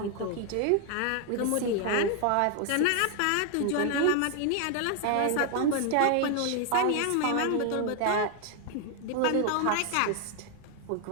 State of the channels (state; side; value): different; both; correlation 0.01